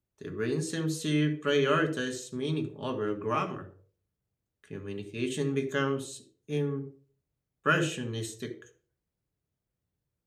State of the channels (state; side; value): identical; both; correlation 1.00